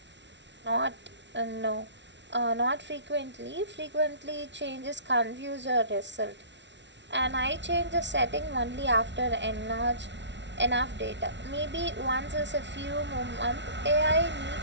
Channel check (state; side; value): late; left; 0.51 ms